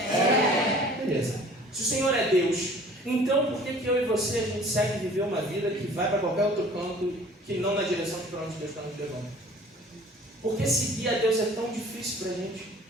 Beleza. Se o Senhor é Deus, então por que eu e você, a gente segue viver uma vida que vai para qualquer outro canto, que não na direção para onde Deus está nos levando? Por que seguir a Deus é tão difícil para a gente?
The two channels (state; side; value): normal; both; correlation 0.50